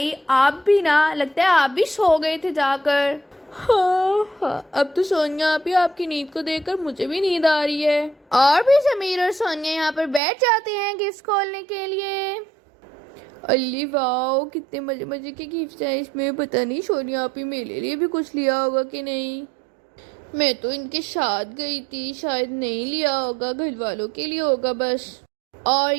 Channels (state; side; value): drops out; left; at 10.2 s